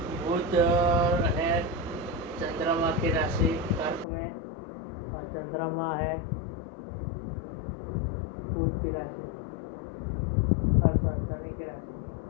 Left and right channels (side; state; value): right; drops out; at 4.0 s